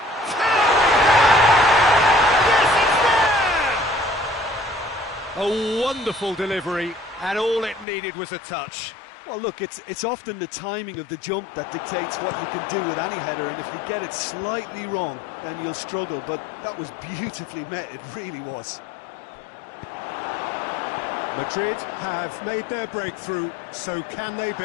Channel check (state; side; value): drops out; right; at 7.9 s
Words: A wonderful delivery, and all it needed was a touch. Well, look, it's often the timing of the jump that dictates what you can do with any header, and if you get it slightly wrong, then you'll struggle, but that was beautifully met, it really was. Madrid have made their breakthrough, so can they